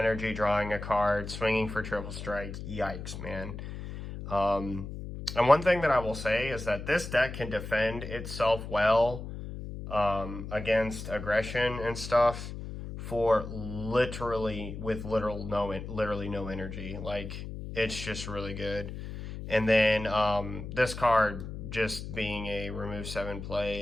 drawing a card, swinging for triple strike. Yikes, man. And one thing that I will say is that this deck can defend itself well against aggression and stuff for literally no energy. Like, it's just really good. And then this card just being a remove 7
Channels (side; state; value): left; noise; hum, 8 dB below the sound